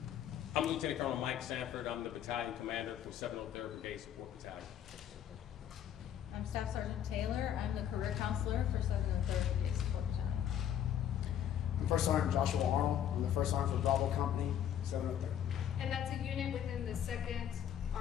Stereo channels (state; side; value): quieter; right; 10.0 dB